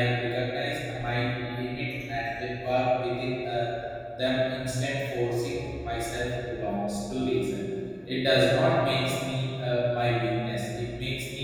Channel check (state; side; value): identical; both; correlation 1.00